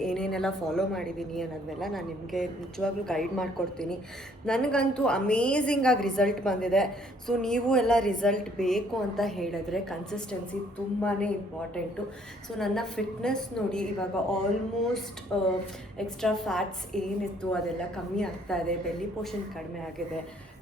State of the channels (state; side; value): normal; both; correlation 0.63